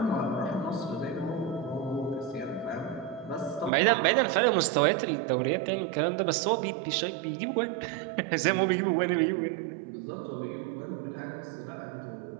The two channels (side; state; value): left; drops out; at 3.7 s